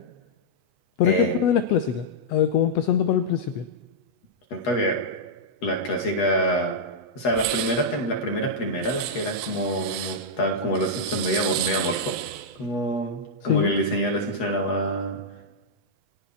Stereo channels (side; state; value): right; late; 8.1 ms